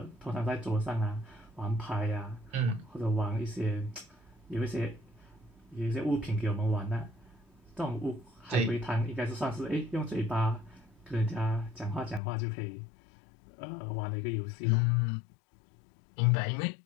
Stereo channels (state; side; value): drops out; right; at 12.2 s